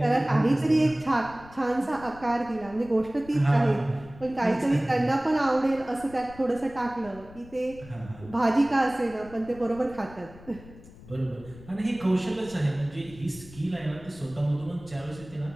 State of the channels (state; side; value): noise; left; rumble, 19 dB below the sound